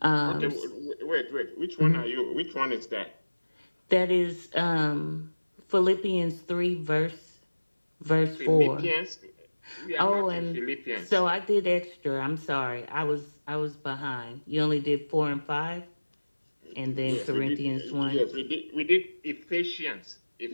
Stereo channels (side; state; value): both; inverted; correlation -1.00